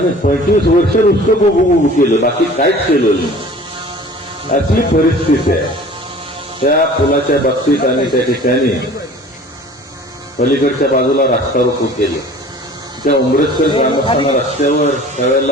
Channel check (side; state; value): both; normal; correlation 0.46